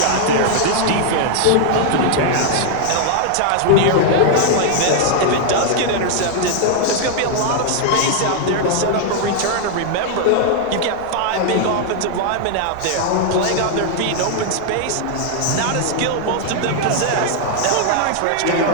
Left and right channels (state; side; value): different; both; correlation 0.00